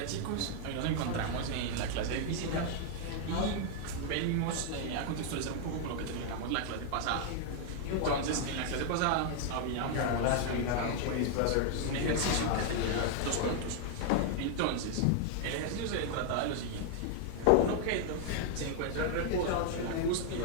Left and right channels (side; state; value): both; different; correlation 0.00